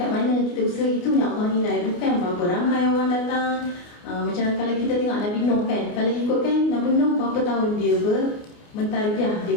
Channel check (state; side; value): late; right; 29 ms